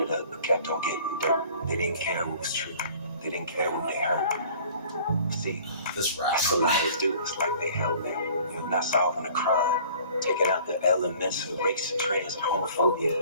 up, but kept on getting dirt. They didn't care what was true. They didn't care what they heard. See, this that's what liars do. It's like they help them. You're not solving a crime. Taking out the elements of race and trans and homophobia.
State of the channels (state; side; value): inverted; both; correlation -0.49